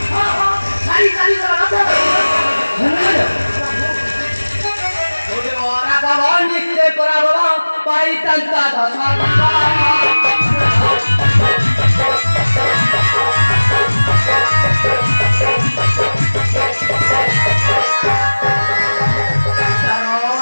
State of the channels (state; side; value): inverted; both; correlation -1.00